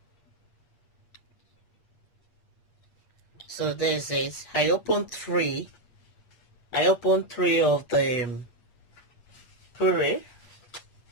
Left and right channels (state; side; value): late; right; 8.5 ms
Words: so there's it. I opened three of the puree.